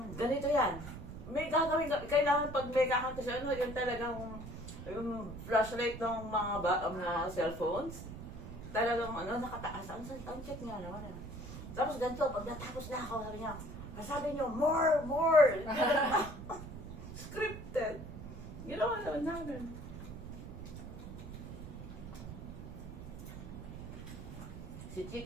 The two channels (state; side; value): noise; right; rumble, 10 dB below the sound